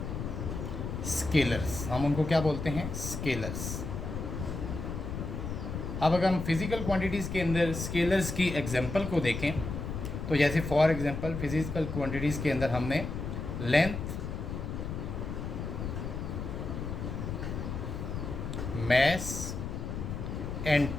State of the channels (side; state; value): left; noise; rumble, 5 dB below the sound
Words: scalars। हम उनको क्या बोलते हैं? स्केलर्स। अब अगर हम फिज़िकल क्वांटिटीज़ के अंदर स्केलर्स की एग्जांपल को देखें तो जैसे फॉर एग्जांपल फिज़िकल क्वांटिटीज़ के अंदर हमने लेंथ, मैस एंड